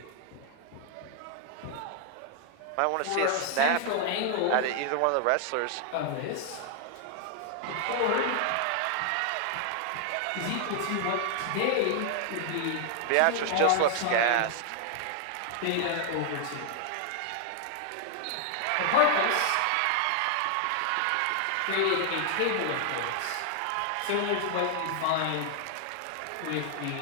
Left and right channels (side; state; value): both; different; correlation 0.00